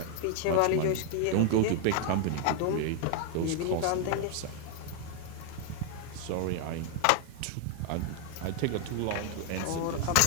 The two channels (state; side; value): different; both; correlation 0.00